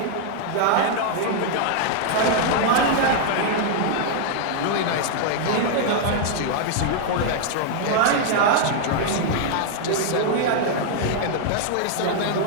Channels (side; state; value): both; different; correlation 0.00